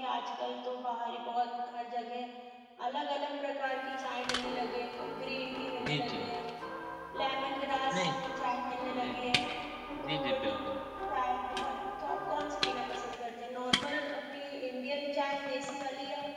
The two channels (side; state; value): both; identical; correlation 1.00